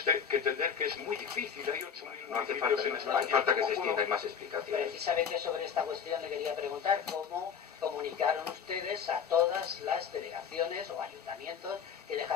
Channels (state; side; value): quieter; right; 7.2 dB